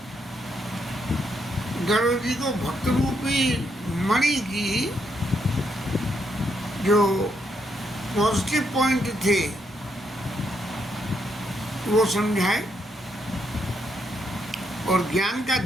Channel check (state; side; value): normal; both; correlation 0.77